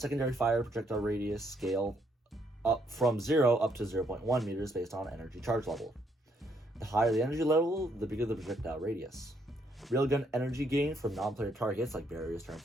fire projectile radius scale up from 0 up to 0.1 meters based on energy charge level. The higher the energy level, the bigger the projectile radius. Railgun energy gain from non-player targets like barriers, turrets,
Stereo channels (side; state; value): both; normal; correlation 0.72